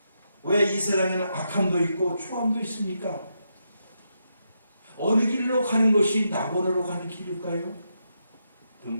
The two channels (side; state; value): both; inverted; correlation -0.82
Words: 왜 이 세상에는 악함도 있고 추함도 있습니까? 어느 길로 가는 것이 낙원으로 가는 길일까요?